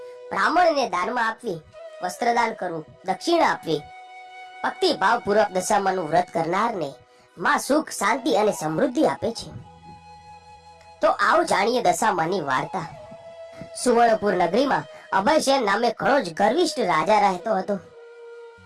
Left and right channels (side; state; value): both; identical; correlation 1.00